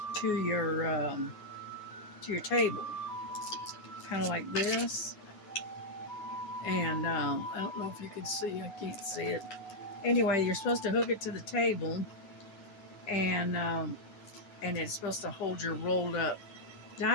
to your table, kind of like this. And I don't know if you can see, I can't see it. Anyway, you're supposed to hook it to the table, and it's supposed to hold your rolled up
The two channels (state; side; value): late; right; 10 ms